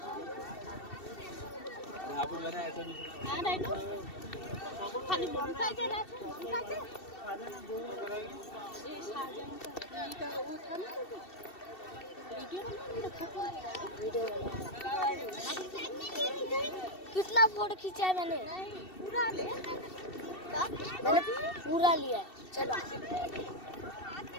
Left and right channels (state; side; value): late; right; 2.7 ms